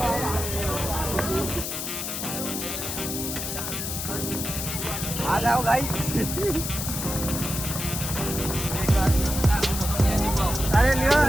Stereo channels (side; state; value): left; noise; hiss, 4 dB below the sound